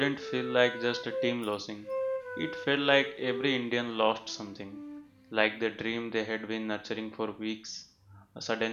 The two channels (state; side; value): identical; both; correlation 1.00